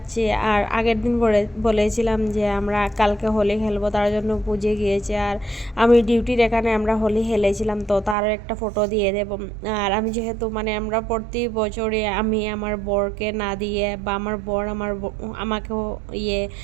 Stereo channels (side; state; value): left; drops out; at 8.2 s